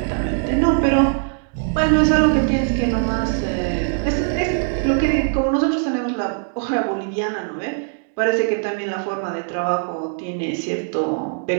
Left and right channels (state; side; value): silent; left; 65 dB below the other